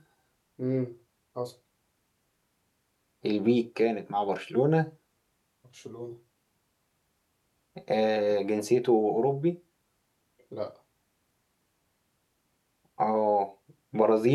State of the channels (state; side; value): identical; both; correlation 1.00